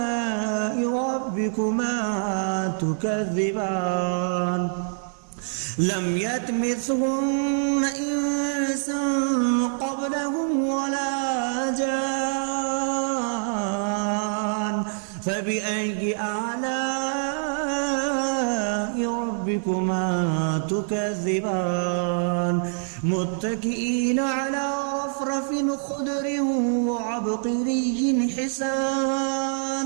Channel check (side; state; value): left; silent; digital silence